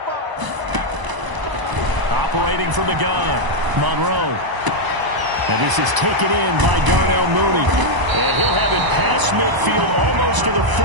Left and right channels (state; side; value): late; left; 1.0 ms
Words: Operating from the gun, Monroe. And this is taken in by Darnell Mooney. And he'll have it past midfield almost to the